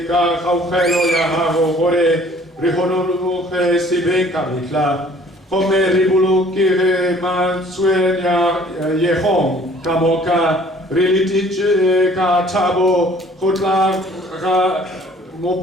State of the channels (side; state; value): both; normal; correlation 0.55